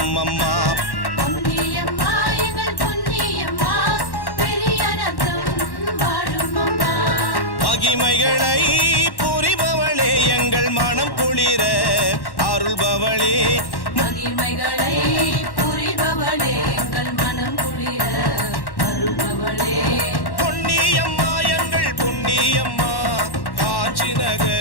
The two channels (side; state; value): right; late; 1.1 ms